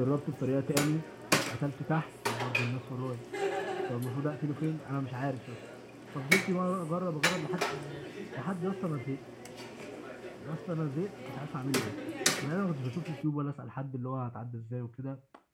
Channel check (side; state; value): both; identical; correlation 1.00